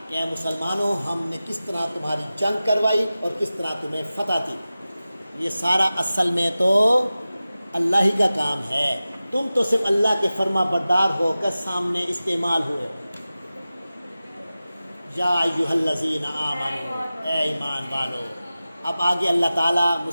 کہ اے مسلمانوں، ہم نے کس طرح تمہاری جنگ کروائی اور کس طرح تمہیں فتح دی۔ یہ سارا اصل میں تو اللہ ہی کا کام ہے، تم تو صرف اللہ کے فرما بردار ہو کر سامنے استعمال ہوئے۔ یا ایھا الذین آمنوا، اے ایمان والو۔ اب آگے اللہ تعالیٰ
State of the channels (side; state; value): both; inverted; correlation -0.95